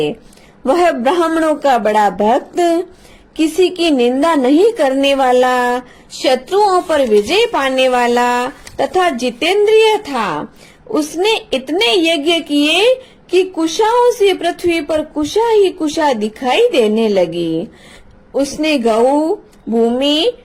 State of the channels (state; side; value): identical; both; correlation 1.00